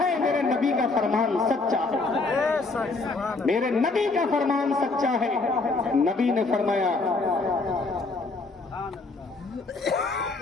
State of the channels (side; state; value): right; quieter; 3.6 dB